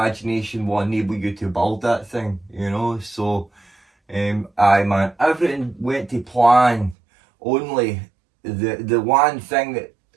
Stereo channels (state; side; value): drops out; left; at 7.0 s